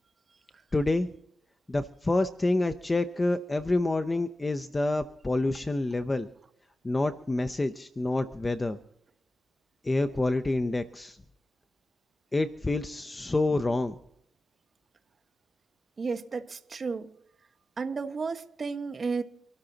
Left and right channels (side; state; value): both; normal; correlation 0.95